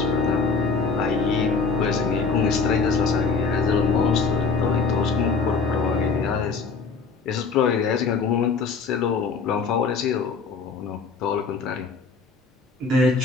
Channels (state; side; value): quieter; right; 4.7 dB